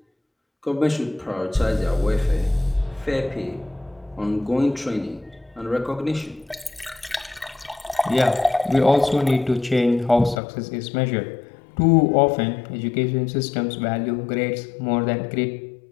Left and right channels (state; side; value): drops out; right; at 10.4 s